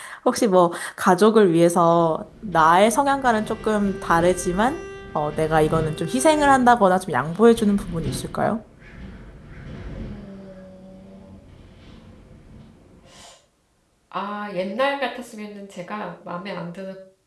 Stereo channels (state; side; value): identical; both; correlation 1.00